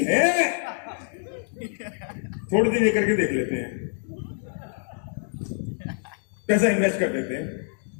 है। थोड़ी देर ये करके देख लेते हैं, पैसा इन्वेस्ट कर देते हैं,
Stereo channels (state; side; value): silent; right; digital silence